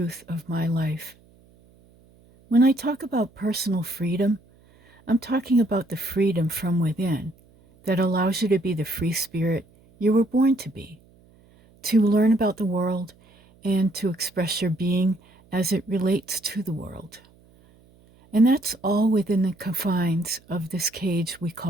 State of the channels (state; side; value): noise; right; hum, 29 dB below the sound